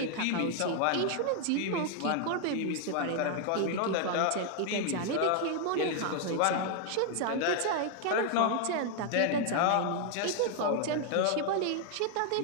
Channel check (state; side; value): different; both; correlation 0.00